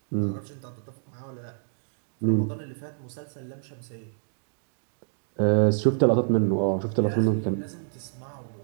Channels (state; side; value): silent; left; digital silence